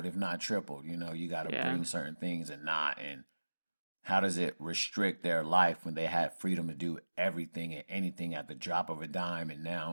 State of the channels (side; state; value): both; inverted; correlation -1.00